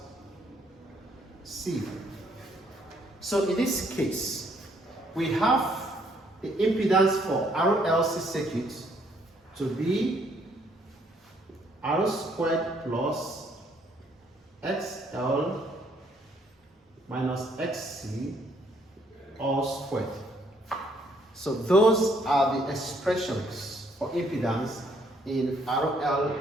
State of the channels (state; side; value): normal; both; correlation 0.67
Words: C. So in this case, we have the impedance for RLC circuit to be R squared plus XL minus XC all squared. So those are the expressions for impedance in RL,